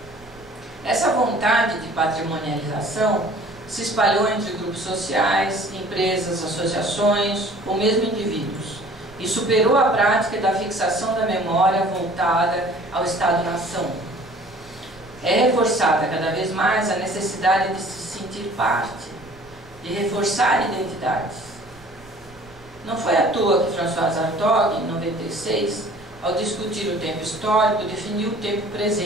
Essa vontade de patrimonialização se espalhou entre grupos sociais, empresas, associações ou mesmo indivíduos e superou a prática da fixação da memória voltada ao Estado-nação. É reforçada cada vez mais a necessidade de se sentir parte, de reforçar identidades. Não foi à toa que François Hartog, em 96, ao discutir o tempo histórico, definiu o tempo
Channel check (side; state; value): right; noise; rumble, 23 dB below the sound